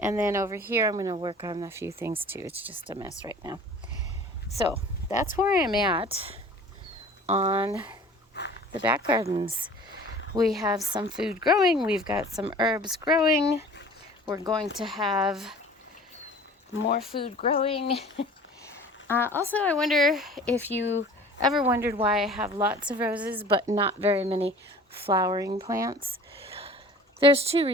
And then over here I'm going to work on a few things too. It's just a mess right now. So that's where I'm at on the back gardens. We have some food growing. We've got some herbs growing. We're going to have more food growing. Also, I wonder if you ever wondered why I have lots of roses but not very many flowering plants. There's 2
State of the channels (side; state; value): both; normal; correlation 0.45